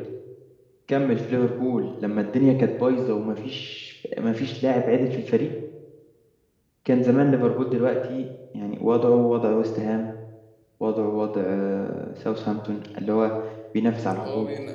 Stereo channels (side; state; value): both; identical; correlation 1.00